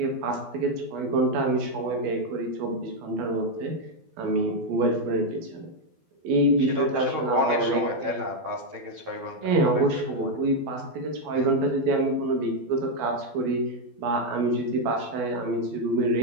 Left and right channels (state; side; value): late; left; 12 ms